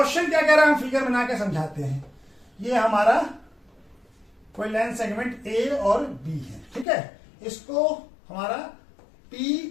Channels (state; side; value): drops out; right; at 6.9 s